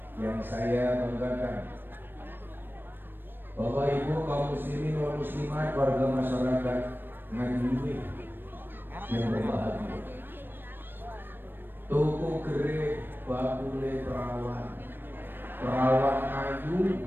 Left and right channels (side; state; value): left; late; 0.096 ms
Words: yang saya banggakan. Bapak Ibu kaum muslimin wal muslimat, warga masyarakat Ngadiluwe yang berbahagia. Toko gere bakule perawan ayu